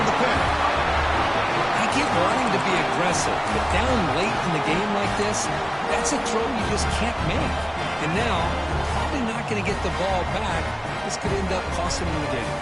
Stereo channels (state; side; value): identical; both; correlation 1.00